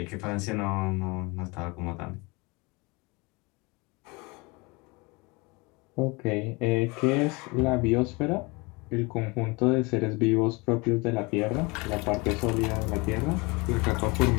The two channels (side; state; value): right; quieter; 26.5 dB